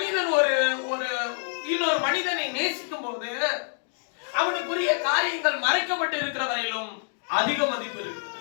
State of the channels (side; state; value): right; silent; digital silence